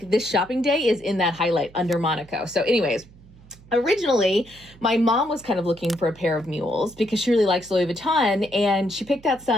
this shopping day is in that highlight under Monaco. So anyways, originally, my mom was kind of looking for a pair of mules because she really likes Louis Vuitton, and she picked out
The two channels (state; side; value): noise; right; hum, 24 dB below the sound